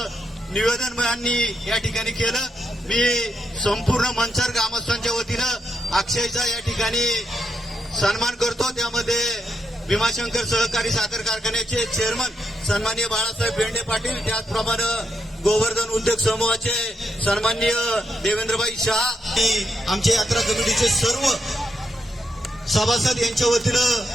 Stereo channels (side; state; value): both; normal; correlation 0.82